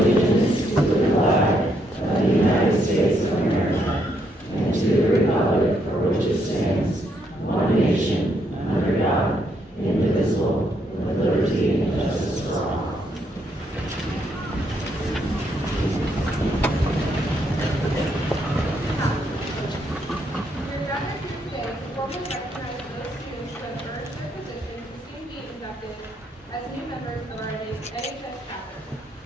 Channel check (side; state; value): both; normal; correlation 0.75